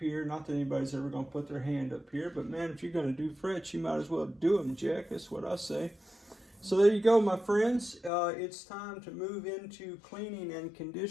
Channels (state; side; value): drops out; right; at 8.1 s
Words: Not that anybody's ever going to put their hand up here, but man, if you're going to do frets, you might as well do them, Jack. That's what I say. So there you go, my friends. It's time to move into cleaning and